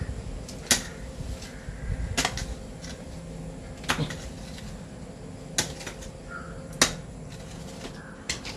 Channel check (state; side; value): identical; both; correlation 1.00